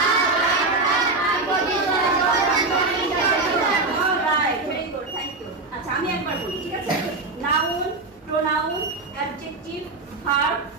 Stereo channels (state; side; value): quieter; left; 3.5 dB